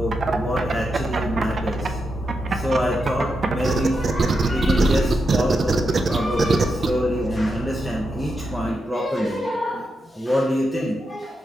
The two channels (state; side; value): normal; both; correlation 0.85